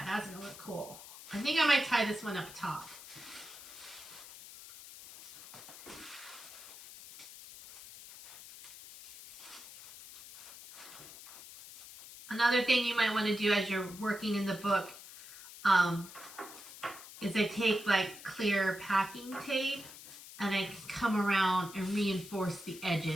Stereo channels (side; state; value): left; noise; hiss, 15 dB below the sound